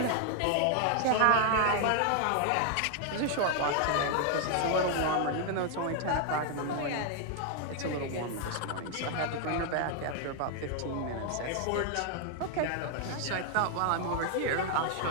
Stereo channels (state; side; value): different; both; correlation 0.00